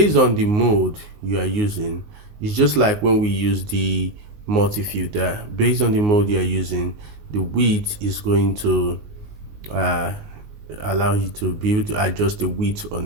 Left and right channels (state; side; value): late; left; 19 ms